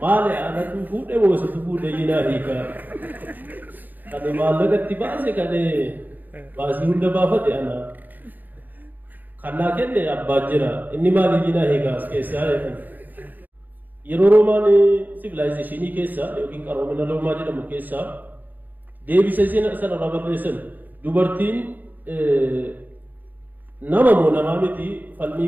maali aanatu fuudhee moositu fuudhee yinaa hiikaa. Kan maallaqatti baase kan baasii hunda baafate ana. Kannaa kenne abbaa jira inni maali yinaa hiikaa as keessaa jedhan. Yeroo Roomaan sivilaayizeeshinii keessa yookiin qaroomina Roomaa jedhamu keessa deebisa sanarra barreessan dubartiin nama moo namaa miti falmii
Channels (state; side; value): late; left; 0.087 ms